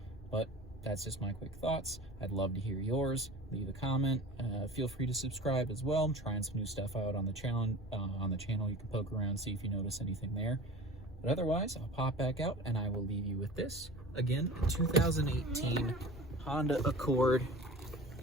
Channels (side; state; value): both; normal; correlation 0.38